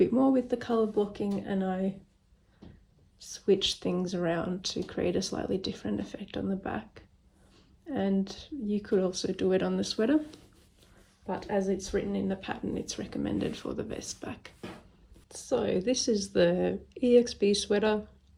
more with the colour blocking, and I switched things around to create a slightly different effect on the back. And you could also do it on the sweater, but as it's written in the pattern it's recommended for the vest back. So this is the EXP sweater,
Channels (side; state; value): both; identical; correlation 1.00